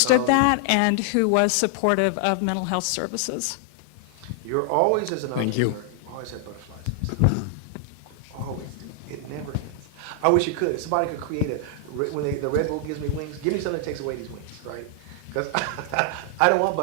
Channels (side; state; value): both; different; correlation 0.00